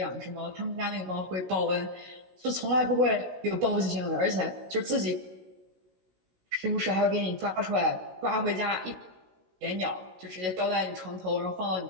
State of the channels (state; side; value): late; left; 16 ms